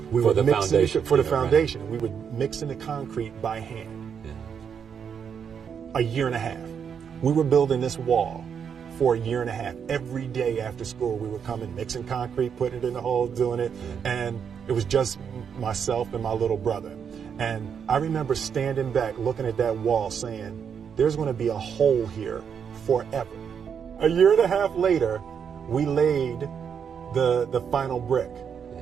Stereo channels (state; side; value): quieter; left; 7.3 dB